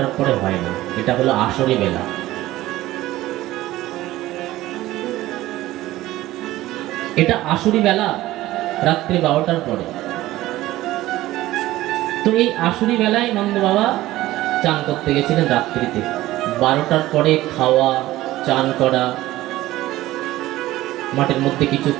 পরে হয় না, এটা হলো আসরি বেলা। এটা আসরি বেলা, রাত্রি 12টার পরে। তো এই আসরি বেলায় নন্দ বাবা চান করতে গেছিলেন রাত্রিতে। 12টার পরে খাওয়া, চান করা, মাঠের মধ্যে কিছু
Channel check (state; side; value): quieter; left; 16.3 dB